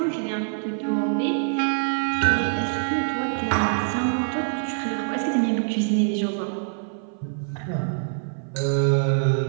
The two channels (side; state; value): left; silent; 55 dB below the other